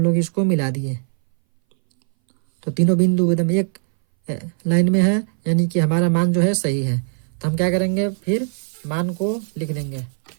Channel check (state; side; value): silent; left; 61 dB below the other